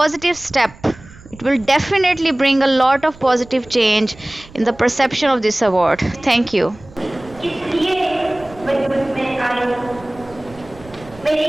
step. It will definitely bring a lot of positive change in the perception of this award. Thank you. इसलिए वजूद में आई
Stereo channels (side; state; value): right; noise; rumble, 21 dB below the sound